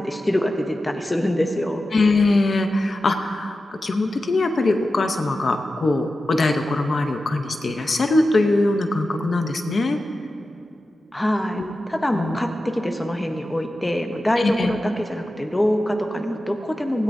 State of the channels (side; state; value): both; normal; correlation 0.93